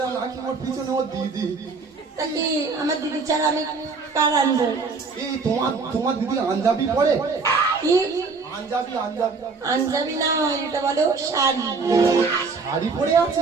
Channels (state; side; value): quieter; left; 4.5 dB